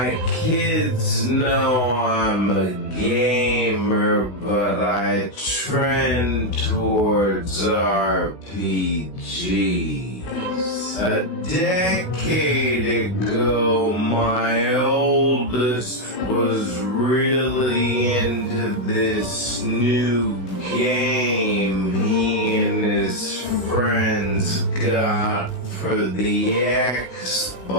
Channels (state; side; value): late; right; 16 ms